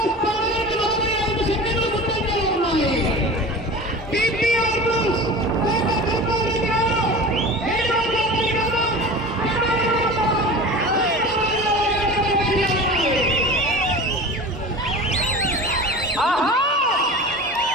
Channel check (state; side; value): normal; both; correlation 0.35